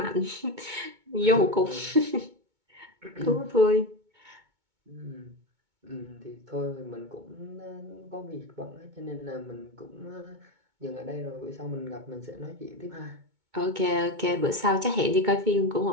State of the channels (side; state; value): left; late; 2.2 ms